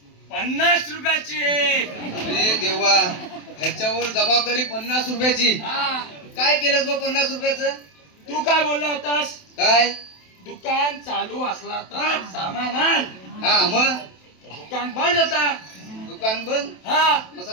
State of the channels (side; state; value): right; late; 27 ms